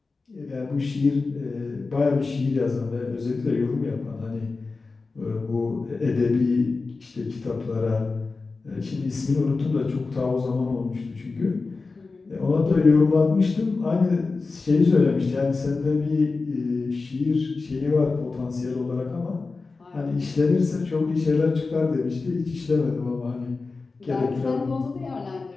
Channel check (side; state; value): right; quieter; 4.0 dB